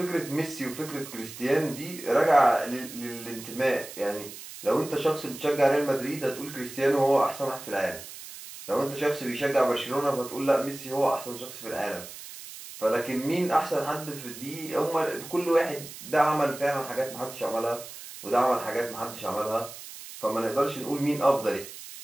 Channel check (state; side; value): noise; right; hiss, 13 dB below the sound